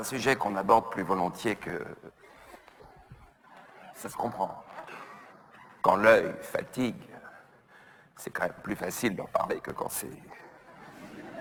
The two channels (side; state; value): both; identical; correlation 1.00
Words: sujet qu'on aborde plus volontiers que... Ça se comprend. Quand l'œil fatigue, c'est quand même plus facile d'en parler que quand c'est...